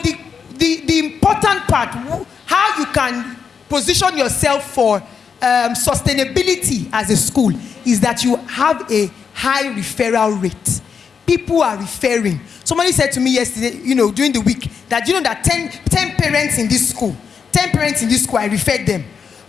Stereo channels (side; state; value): right; quieter; 6.4 dB